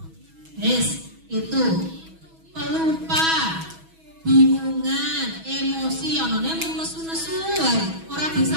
Yes, itu pelupa, bingungan, emosi, onone nesu-nesu wae, ora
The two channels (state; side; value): late; left; 6.2 ms